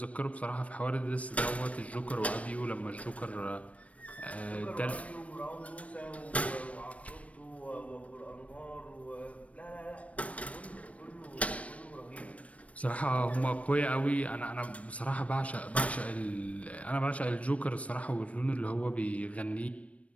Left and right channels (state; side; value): late; right; 0.065 ms